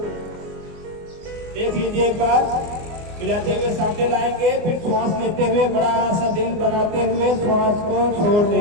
देख लीजिए एक बार, मिलाते हुए सामने लाएंगे, फिर श्वास लेते हुए बड़ा सा दिल बनाते हुए श्वास को छोड़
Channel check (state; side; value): late; left; 24 ms